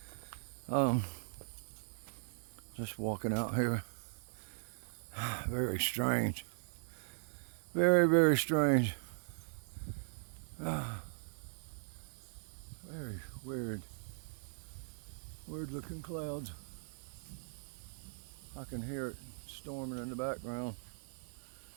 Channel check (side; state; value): left; silent; 51 dB below the other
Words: Just walking out here. Very strange. Very strange. Very weird looking clouds. I can hear it storming in the background,